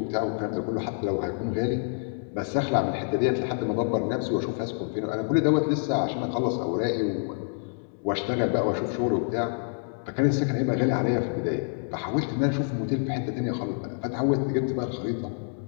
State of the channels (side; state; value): right; silent; digital silence